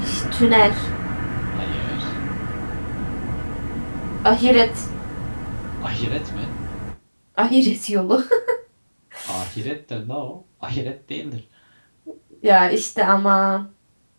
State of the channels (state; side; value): inverted; both; correlation -1.00